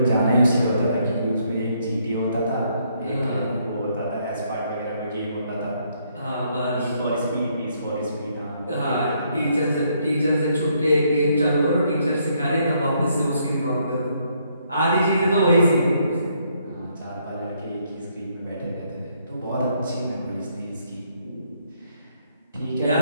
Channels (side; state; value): both; inverted; correlation -0.72